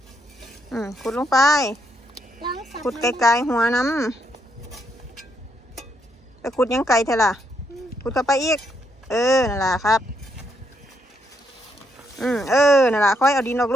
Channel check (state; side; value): normal; both; correlation 0.76